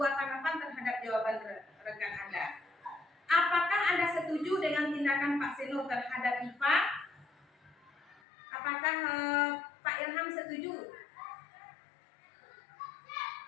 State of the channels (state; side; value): drops out; right; at 8.2 s